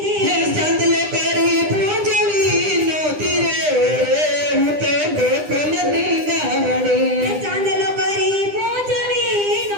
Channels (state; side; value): late; left; 9.9 ms